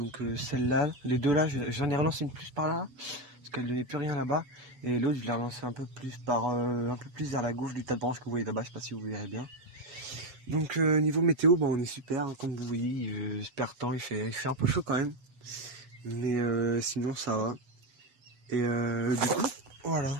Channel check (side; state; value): left; late; 8.1 ms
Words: celle-là, les deux là, j'en ai relancé une plus par là, parce qu'elle ne donnait plus rien là-bas. Et l'autre, je l'ai relancé un peu plus un peu plus vers la gauche du tas de branches que vous voyez là-bas, je sais pas si vous verrez bien. Donc niveau météo, bah, on est super, hein, comme vous voyez, super temps, il fait un peu chaud quand même. Mais sinon ça va. Et du coup,